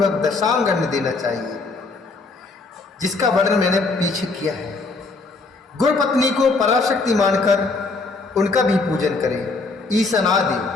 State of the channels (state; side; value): quieter; right; 3.8 dB